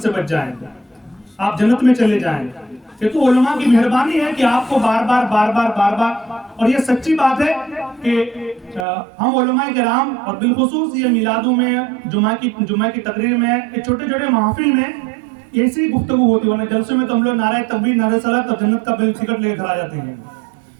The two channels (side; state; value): left; drops out; at 8.8 s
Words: بچ جائیں, آپ جنت میں چلے جائیں. یہ تو علماء کی مہربانی ہے کہ آپ کو بار بار, اور یہ سچی بات ہے کہ ہم علماء کرام اور بالخصوص یہ میلادوں میں, جمعہ کی تقریر میں, چھوٹے چھوٹے محافل میں ایسی گفتگو ہوتی ہے. جلسوں میں تو ہم لوگ نعرہ تکبیر, نعرہ صلاۃ اور جنت کا بل ٹکٹ لے کر آ جاتے ہیں.